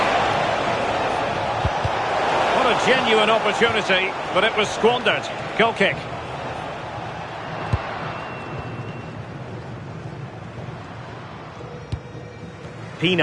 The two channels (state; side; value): identical; both; correlation 1.00